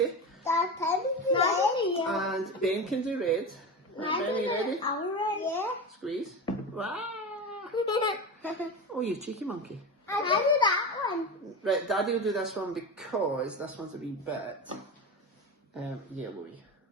And Ben can do red. Right, Ben, are you ready? Yeah. Squeeze. Wow. Oh, you cheeky monkey. I do that one. Right, Daddy will do this one because this one's a wee bit yellowy.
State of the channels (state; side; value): normal; both; correlation 0.24